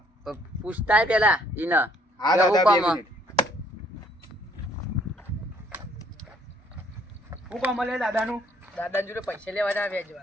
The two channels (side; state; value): both; normal; correlation 0.64